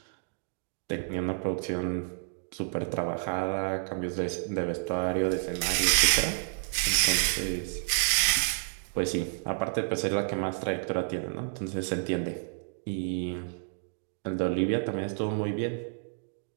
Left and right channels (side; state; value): left; silent; 58 dB below the other